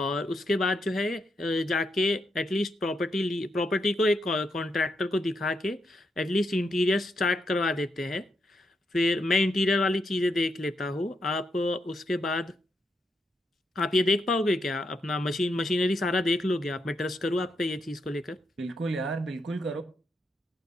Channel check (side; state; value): both; normal; correlation 0.81